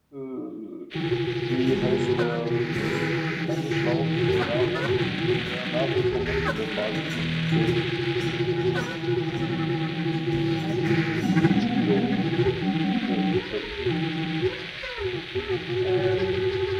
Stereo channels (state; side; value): identical; both; correlation 1.00